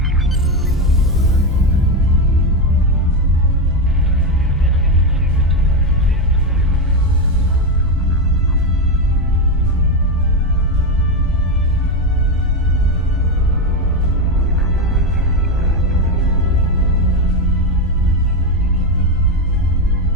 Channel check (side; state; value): both; normal; correlation 0.11